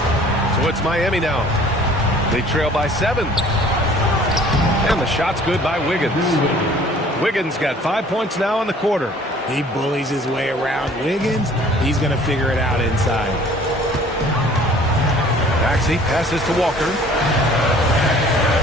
So it's Miami now. They trail by 7. And the shot's good by Wiggins. Wiggins got 5 points now in the quarter. He bullies his way around Wiggins. He's going to figure it out inside. Maxey passes to Walker.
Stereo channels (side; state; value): both; normal; correlation 0.52